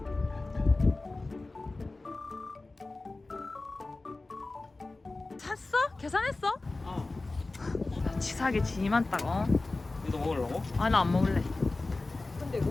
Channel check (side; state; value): right; quieter; 3.3 dB